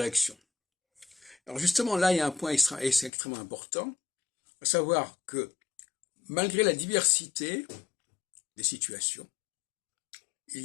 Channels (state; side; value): drops out; right; at 3.1 s